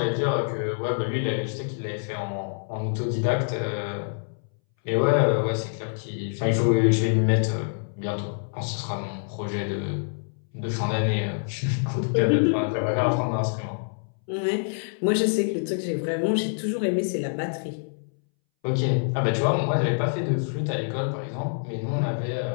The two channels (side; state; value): right; silent; 61 dB below the other